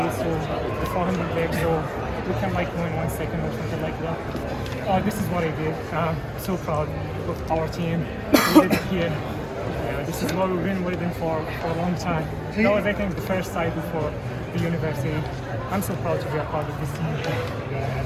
to the 400 legs, so we can like go in 1 second or something like that. This is what I did. So proud of our team. We did it here. This is what we've been waiting for a long time. That was, I think, the first side before the university. I'm so proud to be a part of this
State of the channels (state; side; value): identical; both; correlation 1.00